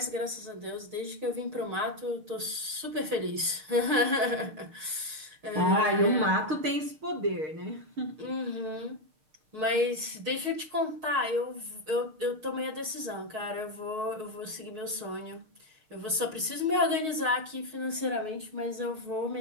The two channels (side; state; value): left; late; 6.4 ms